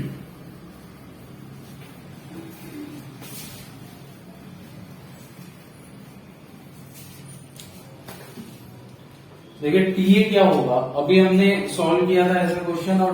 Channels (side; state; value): both; identical; correlation 1.00